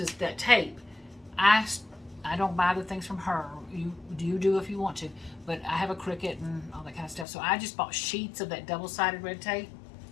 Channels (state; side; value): drops out; right; at 7.2 s